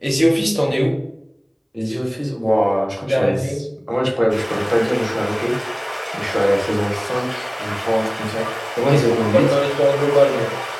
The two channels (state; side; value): identical; both; correlation 1.00